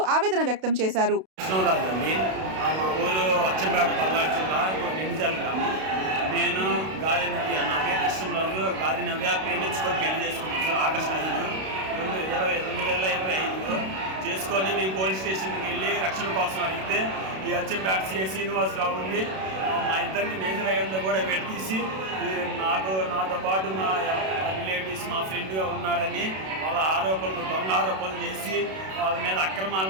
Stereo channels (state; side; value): late; left; 32 ms